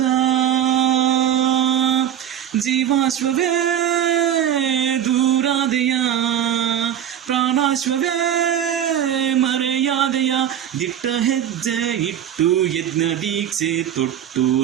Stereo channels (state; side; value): quieter; left; 10.0 dB